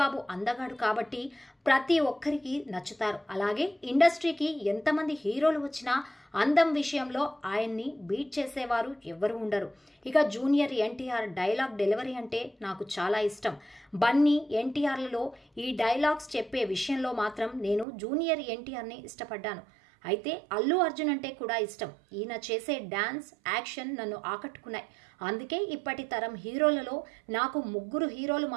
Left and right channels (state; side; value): drops out; left; at 17.9 s